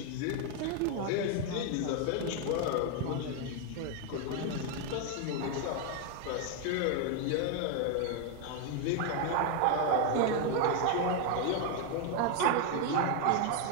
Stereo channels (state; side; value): different; both; correlation 0.01